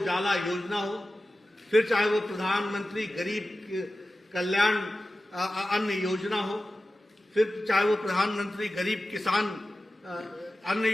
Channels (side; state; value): both; normal; correlation 0.94